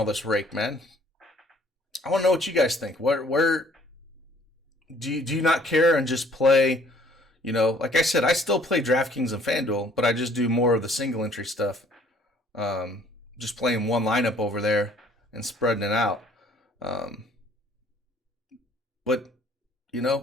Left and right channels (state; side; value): normal; both; correlation 0.58